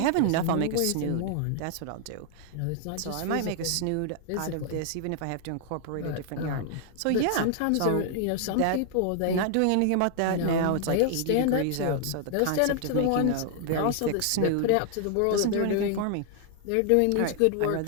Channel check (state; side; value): different; both; correlation 0.00